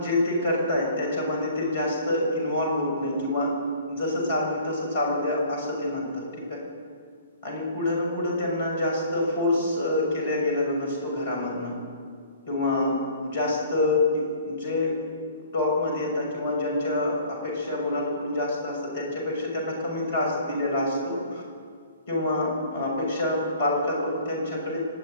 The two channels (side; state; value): both; inverted; correlation -0.52